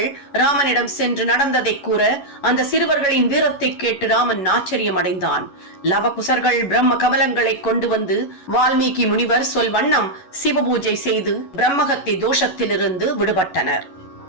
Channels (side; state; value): right; late; 11 ms